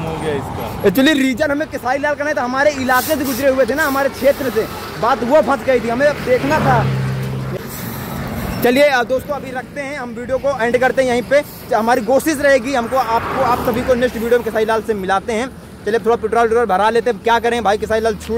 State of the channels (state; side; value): identical; both; correlation 1.00